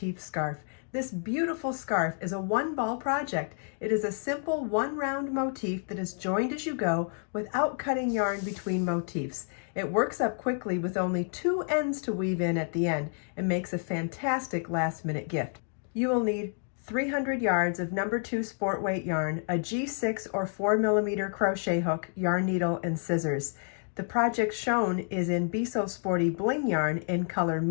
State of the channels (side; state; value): right; silent; 58 dB below the other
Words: Scarf. This beautiful scarf is a one-ball project. It is a simple one-round motif that is joined as you go without cutting yarn between motifs. It works up quickly with only 2 ends to weave in at the end and makes a fantastic last-minute gift. You will need 300 yards of No. 2 sport weight yarn, a G6 or 4mm crochet hook, yarn needle, and scissors. The project shown is in Sporty BLING yarn in color